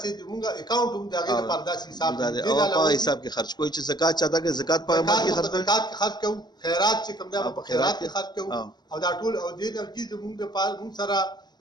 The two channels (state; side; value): late; right; 0.20 ms